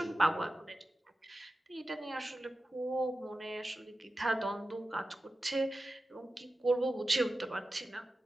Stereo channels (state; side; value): normal; both; correlation 0.93